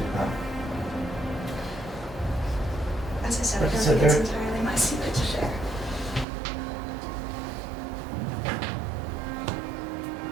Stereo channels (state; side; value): drops out; left; at 6.2 s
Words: about? As I said, I Like I don't said, think it's entirely my secret to share.